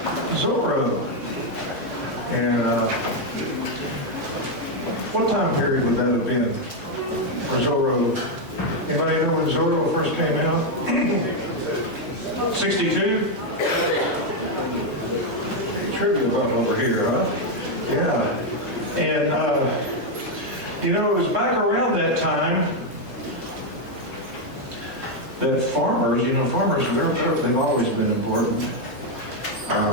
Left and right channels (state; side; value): normal; both; correlation 0.03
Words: Zorro. And what time period would that have been for Zorro? Anybody know when Zorro first came out? 62? Trivia button over here, huh? Yeah. And, you know, it was back around that time that farmers, you know, farmers, they've always been important.